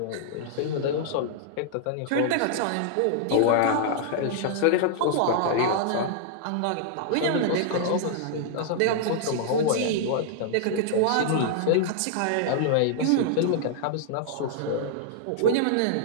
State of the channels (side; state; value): both; different; correlation -0.01